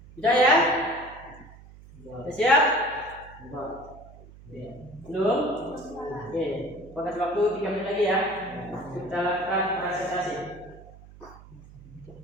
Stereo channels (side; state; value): right; noise; hum, 20 dB below the sound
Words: Sudah ya? Sudah siap? Belum? Oke, kasih waktu 3 menit lagi ya. Kita lakukan presentasi